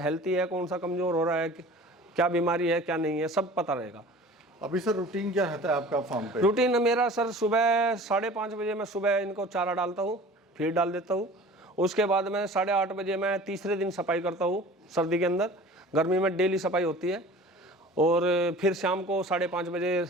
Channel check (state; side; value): normal; both; correlation 0.42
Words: है, कौन सा कमज़ोर हो रहा है, क्या बीमारी है क्या नहीं है, सब पता रहेगा। अभी सर रूटीन क्या रहता है आपका फार्म पे? रूटीन मेरा सर सुबह 5:30 बजे मैं सुबह इनको चारा डालता हूँ, फीड डाल देता हूँ। उसके बाद मैं 8:30 बजे मैं तीसरे दिन सफाई करता हूँ सर्दी के अंदर, गर्मी में डेली सफाई होती है। और फिर शाम को 5:30 बजे